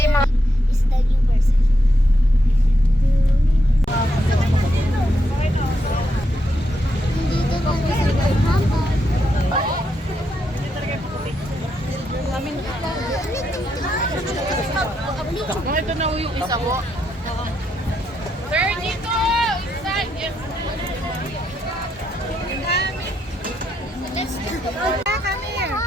mga... Is the new version. Hindi ka ba Ito na yung isa ko. Sir, dito! Inside! Yes.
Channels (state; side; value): normal; both; correlation 0.80